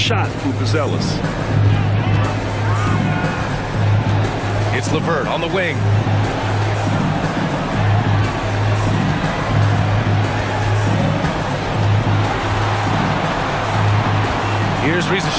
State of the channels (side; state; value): both; identical; correlation 1.00